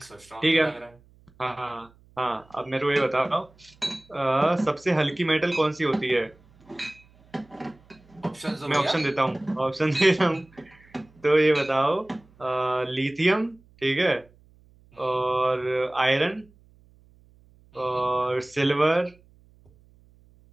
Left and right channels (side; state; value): right; noise; hum, 29 dB below the sound